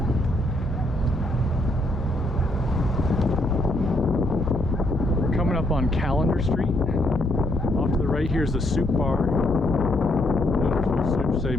We're coming up on Calendar Street. Off to the right here is the Soup Bar. Wonderful soups they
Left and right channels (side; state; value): left; noise; hum, 10 dB below the sound